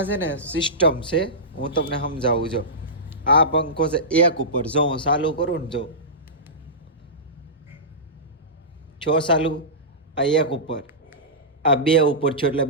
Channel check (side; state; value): both; normal; correlation -0.18